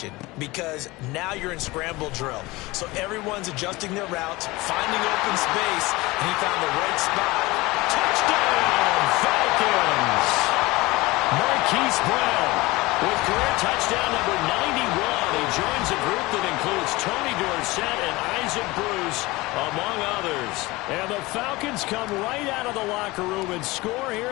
because now you're in scramble drill. So everyone's adjusting their routes, finding open space, and he found the right spot. Touchdown, Falcons! Marquise Brown with career touchdown number 91. He joins a group that includes Tony Dorsett and Isaac Bruce, among others. And the Falcons come right out of the locker room and score here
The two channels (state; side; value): quieter; right; 21.4 dB